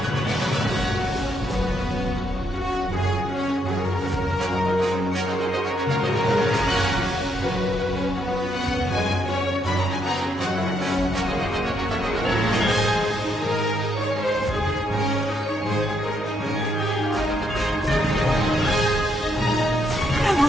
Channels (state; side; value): normal; both; correlation 0.76